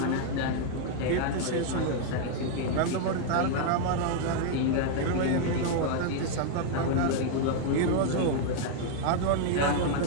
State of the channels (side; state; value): both; different; correlation -0.01